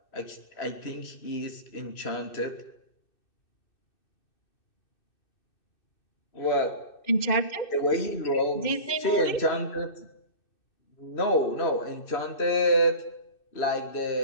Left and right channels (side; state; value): right; late; 2.6 ms